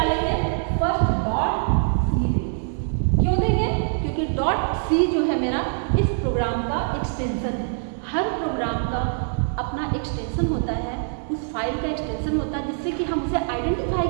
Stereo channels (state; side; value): silent; left; 59 dB below the other